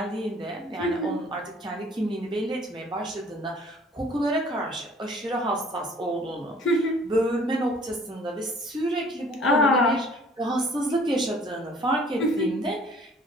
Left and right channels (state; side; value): normal; both; correlation 0.54